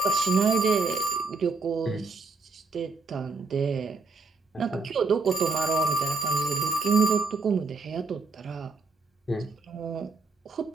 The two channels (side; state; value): left; quieter; 3.9 dB